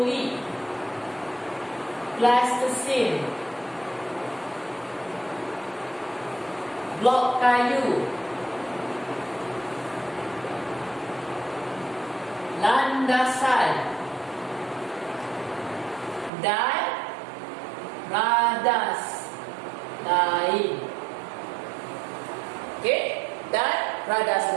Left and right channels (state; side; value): drops out; left; at 16.3 s